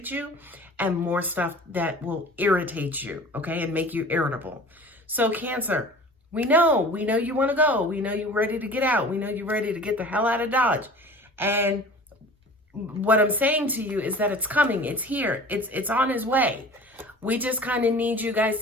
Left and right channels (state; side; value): normal; both; correlation 0.42